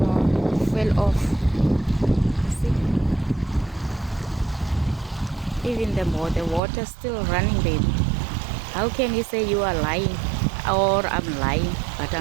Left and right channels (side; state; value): left; drops out; at 6.6 s